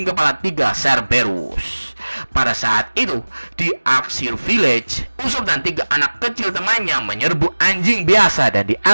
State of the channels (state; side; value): inverted; both; correlation -1.00